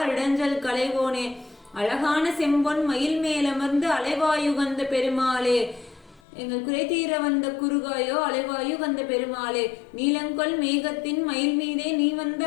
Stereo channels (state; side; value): drops out; right; at 6.2 s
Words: இடஞ்சல் கலைவோனே அழகான செம்பொன் மயில் மேலமர்ந்து அலைவாயுகந்த பெருமாளே எங்கள் குறை தீர வந்த குறுகாயோ அலைவாயு வந்த பெருமாளே நீலங்கொள் மேகத்தின் மயில் மீதே நீ வந்த